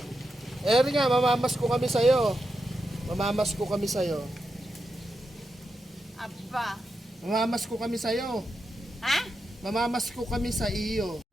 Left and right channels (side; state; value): both; normal; correlation 0.87